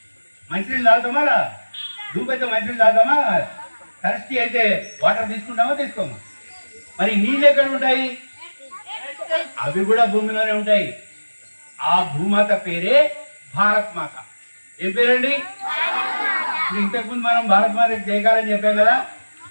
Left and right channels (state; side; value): inverted; both; correlation -1.00